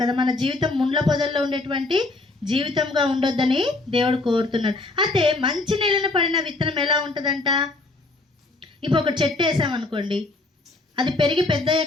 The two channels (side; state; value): right; quieter; 3.1 dB